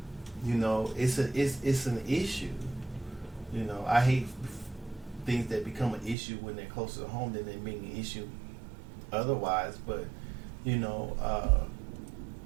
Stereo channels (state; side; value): drops out; left; at 6.2 s